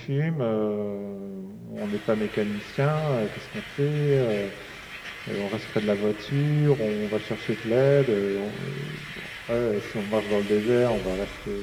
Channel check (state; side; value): identical; both; correlation 1.00